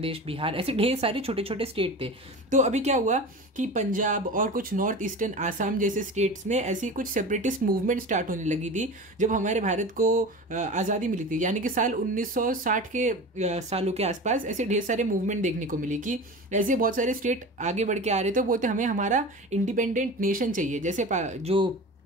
बिहार, ऐसे ढेर सारे छोटे स्टेट थे। तो अभी क्या हुआ कि पंजाब और कुछ नॉर्थ ईस्टर्न आसाम जैसे स्टेट्स में ऐसी कुछ सेपरेटिस्ट मूवमेंट स्टार्ट होने लगी थी जब हमारे भारत को आज़ादी मिली थी, यानी कि साल 1960 के सालों के आसपास ऐसे ढेर सारे मूवमेंट देखने को मिली कि ऐसे बहुत सारे स्टेट आगे बढ़ के आ रहे थे, बोलते हमें हमारा इंडिपेंडेंट नेशन चाहिए। जैसे जो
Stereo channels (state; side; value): normal; both; correlation 0.32